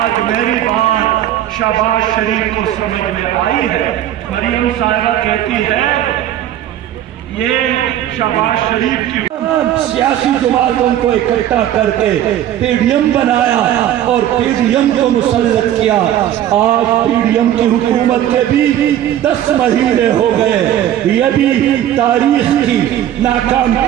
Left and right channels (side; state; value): left; quieter; 11.7 dB